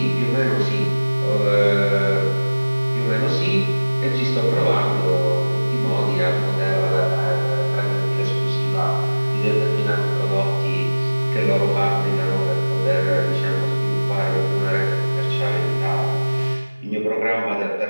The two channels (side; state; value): both; inverted; correlation -1.00